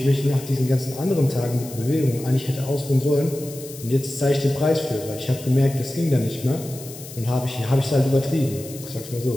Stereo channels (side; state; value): left; noise; hiss, 15 dB below the sound